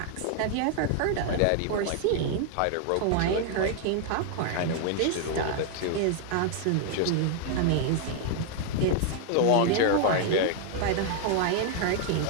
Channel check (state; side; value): different; both; correlation 0.00